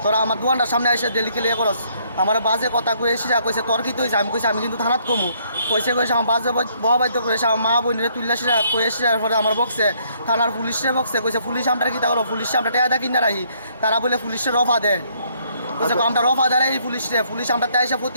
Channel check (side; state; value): both; inverted; correlation -0.67